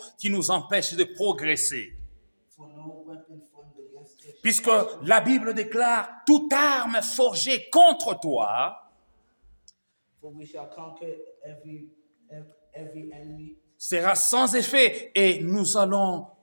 qui nous empêche de progresser. Puisque la Bible déclare toute arme forgée contre toi sera sans effet et nous allons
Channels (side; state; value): both; inverted; correlation -1.00